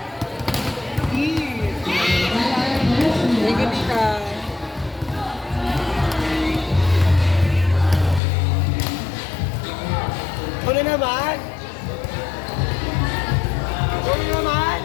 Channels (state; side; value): drops out; right; at 8.2 s